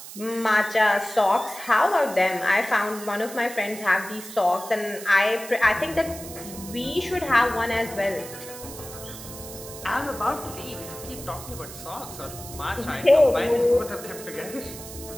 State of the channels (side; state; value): right; noise; hiss, 13 dB below the sound